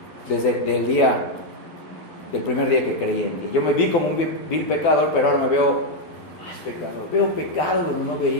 desde del primer día que creí en ti. Yo me vi como un vil pecador, pero ahora me veo más pecador. Veo pecado donde no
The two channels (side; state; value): right; late; 12 ms